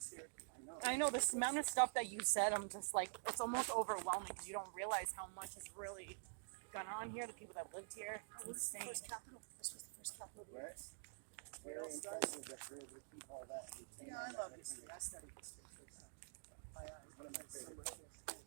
here. I know. I know this amount of stuff that you said, I'm just like, it's almost overwhelming because you don't realize how much has really gone on here, the people that lived here. It's What was the insane. first capital? This was the first capital of the Right. US. Very impressive that we're able to keep all that. and retain Yeah, all I that love history. information. I study history and stuff. One of my So favorite much books. history.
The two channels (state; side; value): silent; left; digital silence